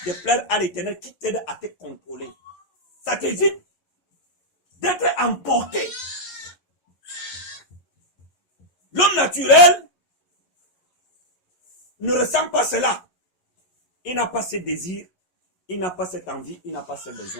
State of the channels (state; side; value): late; right; 11 ms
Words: de plaire à l'Éternel qui t'aide à te contrôler. Ça t'évite d'être emporté. L'homme naturel ne ressent pas cela. Il n'a pas ses désirs, il n'a pas cette envie, il n'a pas ses